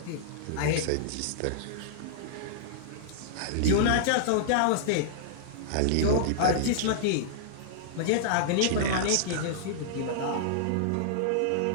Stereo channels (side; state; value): both; different; correlation -0.01